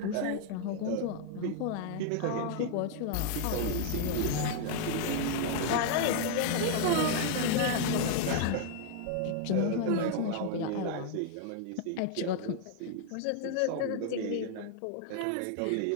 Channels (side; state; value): both; different; correlation 0.00